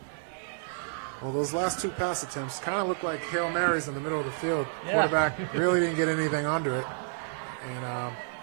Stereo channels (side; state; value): left; silent; digital silence